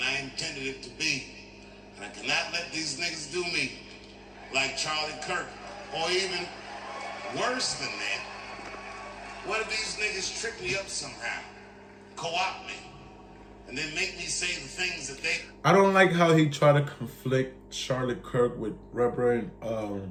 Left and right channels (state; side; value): identical; both; correlation 1.00